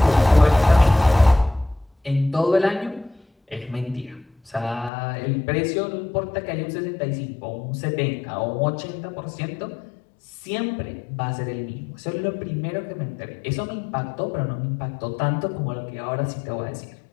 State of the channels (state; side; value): drops out; right; at 4.9 s